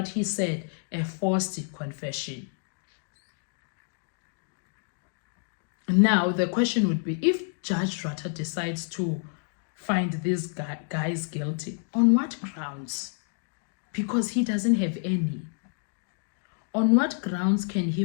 he said, a forced confession. Now, the question would be, if Judge Rata decides to find these guys guilty, on what grounds? Because he doesn't have any. On what grounds can he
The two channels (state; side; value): silent; right; 55 dB below the other